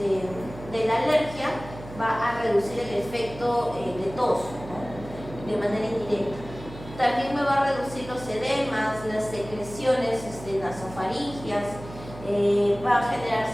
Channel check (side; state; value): right; noise; hum, 14 dB below the sound